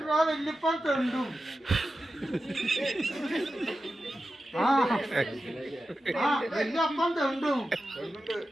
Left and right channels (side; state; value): both; normal; correlation 0.92